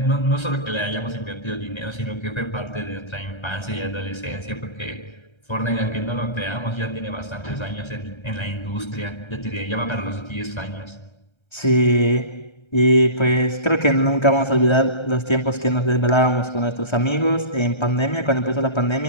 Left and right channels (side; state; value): right; late; 1.3 ms